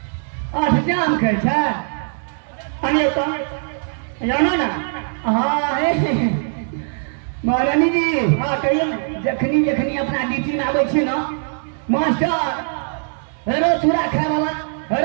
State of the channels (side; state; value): left; silent; 65 dB below the other